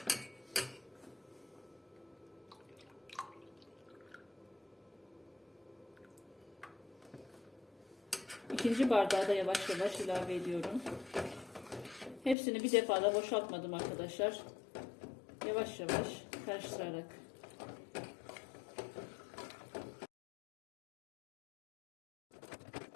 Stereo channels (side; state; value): right; drops out; at 12.4 s